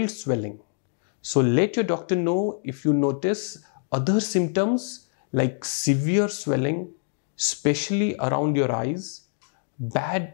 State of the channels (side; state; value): right; silent; digital silence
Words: swelling. So let your doctor know if you notice other symptoms like severe swelling, especially around your eyes, bad